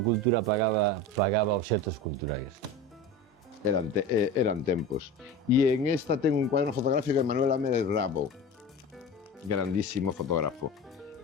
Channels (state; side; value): normal; both; correlation 0.32